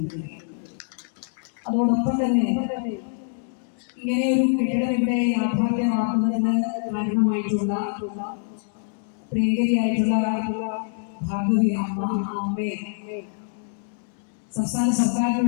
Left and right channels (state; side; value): silent; right; 62 dB below the other